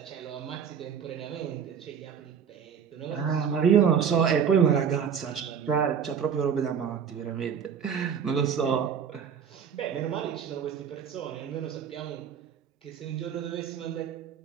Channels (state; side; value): quieter; left; 7.5 dB